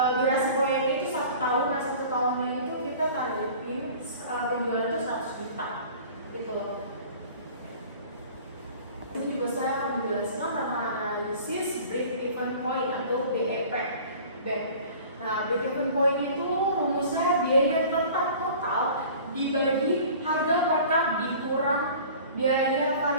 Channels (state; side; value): inverted; both; correlation -0.44